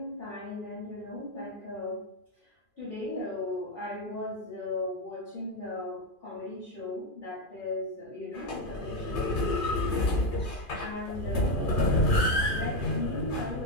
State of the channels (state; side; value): late; right; 2.4 ms